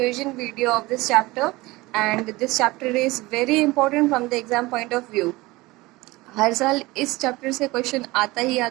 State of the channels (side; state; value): left; quieter; 20.9 dB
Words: video of this chapter and this chapter is very important from the exam point of view. हर साल इस चैप्टर से क्वेश्चन आता ही